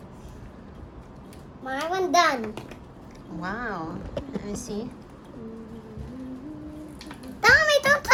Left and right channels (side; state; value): both; identical; correlation 1.00